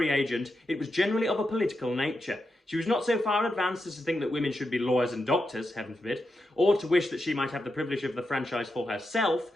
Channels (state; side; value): normal; both; correlation 0.87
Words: agent, it was generally of a political nature. She was not so far advanced as to think that women should be lawyers and doctors, heaven forbid, or to wish that she might have the privilege of the franchise for herself,